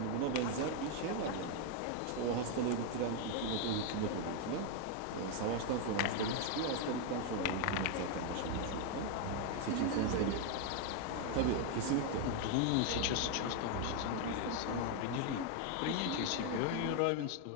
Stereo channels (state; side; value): different; both; correlation 0.01